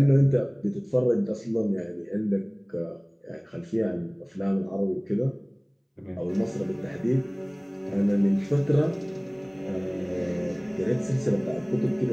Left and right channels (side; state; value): both; identical; correlation 1.00